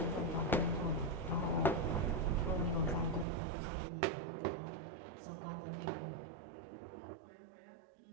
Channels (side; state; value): left; drops out; at 3.2 s